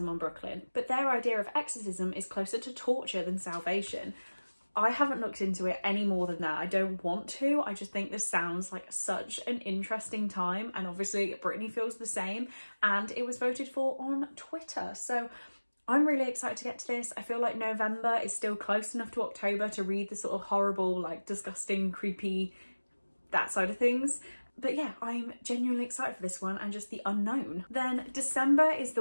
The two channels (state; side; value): inverted; both; correlation -1.00